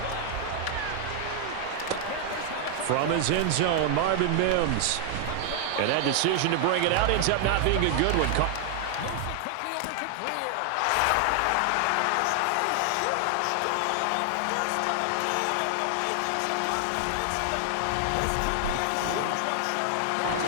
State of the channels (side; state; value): both; different; correlation 0.00